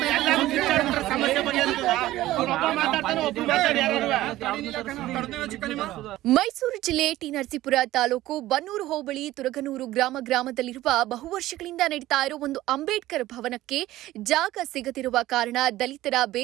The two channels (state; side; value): quieter; left; 15.7 dB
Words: ಸಮಸ್ಯೆ ಮೈಸೂರು ಜಿಲ್ಲೆ ಟಿ ನರಸೀಪುರ ತಾಲೂಕು ಬನ್ನೂರು ಹೋಬಳಿ ತುರಗನೂರು ಗ್ರಾಮದಲ್ಲಿರುವ ಬಹುವರ್ಷಗಳಿಂದ ನಡೀತಾ ಇರುವ ಒಂದು ಅಂಬೇಡ್ಕರ್ ಭವನಕ್ಕೆ ಜಾಗ ಸಿಗದಿರುವ ಕಾರಣ ದಲಿತರ